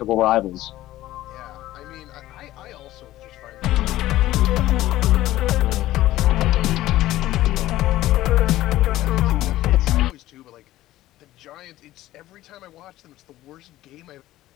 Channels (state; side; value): quieter; right; 15.3 dB